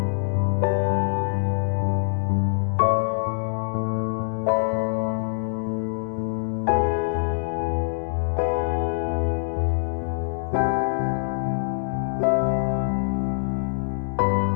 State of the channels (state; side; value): silent; right; digital silence